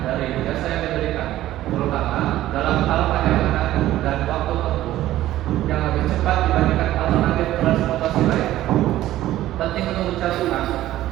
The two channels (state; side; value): quieter; left; 14.4 dB